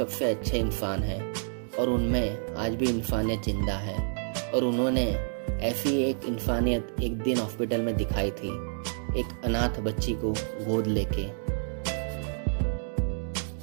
अच्छे इंसान हैं, और उनमें आज भी इंसानियत जिंदा है। और उन्होंने ऐसी एक इंसानियत एक दिन हॉस्पिटल में दिखाई थी, एक अनाथ बच्ची को गोद लेके।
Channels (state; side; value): silent; left; digital silence